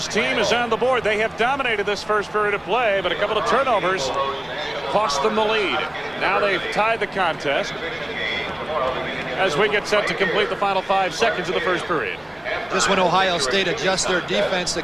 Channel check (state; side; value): noise; left; rumble, 29 dB below the sound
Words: team is on the board. They have dominated this first period of play, but a couple of turnovers cost them the lead. Now they've tied the contest as we get set to complete the final 5 seconds of the first period. Just when Ohio State adjusts their defense to